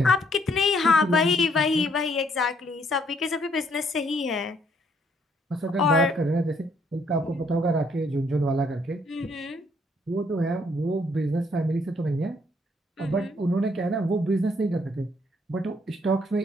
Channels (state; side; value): normal; both; correlation 0.68